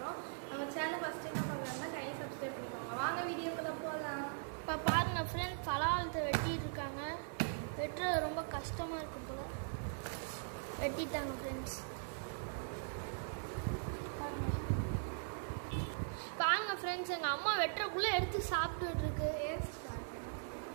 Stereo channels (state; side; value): silent; left; 51 dB below the other